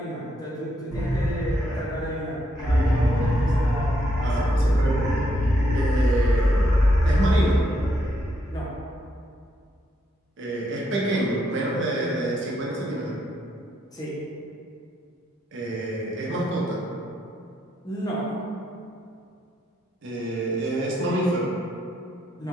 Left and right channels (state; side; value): normal; both; correlation 0.77